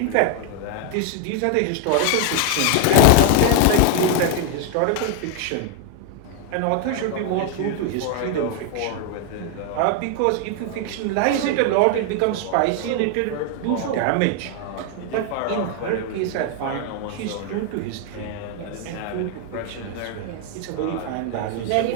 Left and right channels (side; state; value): both; different; correlation 0.01